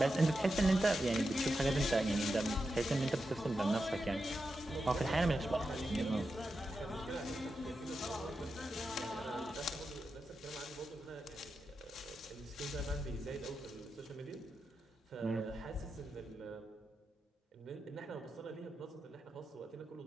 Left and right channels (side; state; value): both; normal; correlation 0.89